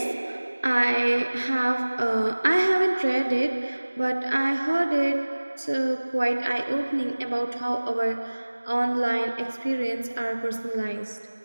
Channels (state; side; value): inverted; both; correlation -1.00